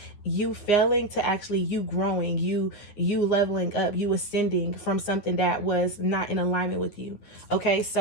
you failing to actually you growing, you leveling up, you ascending from something that was not in alignment with you. Okay,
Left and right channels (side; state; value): right; late; 9.7 ms